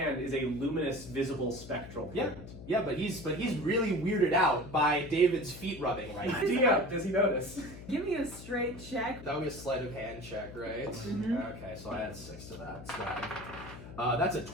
is a luminous, visible, spectral Yeah, print. yeah, but he's really weirded out by David's feet rubbing right now. Does he notice? Give me a straight check. That would be a sleight of hand check, right? Mhm. Okay, so I add 6 to that. So that's a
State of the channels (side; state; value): left; noise; hum, 14 dB below the sound